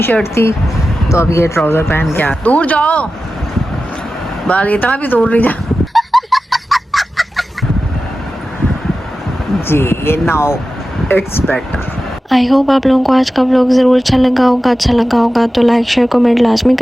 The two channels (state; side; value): normal; both; correlation 0.94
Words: शर्ट थी, तो अब ये ट्राउजर पहन के आ। दूर जाओ, बाल इतना भी दूर नहीं जा। जी ये now it's better. I hope आप लोगों को आज का व्लॉग ज़रूर अच्छा लगा होगा तो लाइक शेयर कमेंट लाजमी